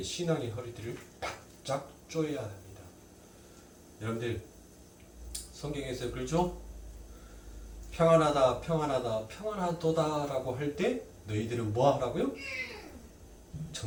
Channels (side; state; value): both; identical; correlation 1.00